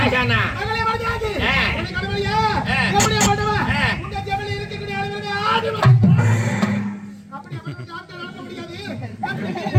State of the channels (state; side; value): identical; both; correlation 1.00